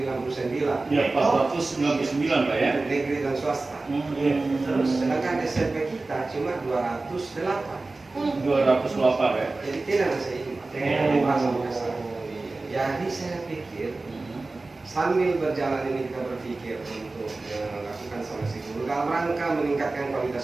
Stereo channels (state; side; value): quieter; left; 3.4 dB